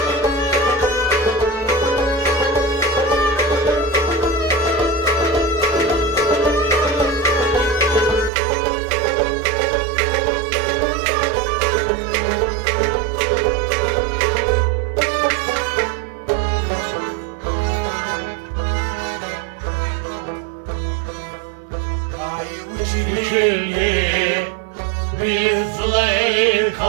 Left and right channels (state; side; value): drops out; left; at 8.3 s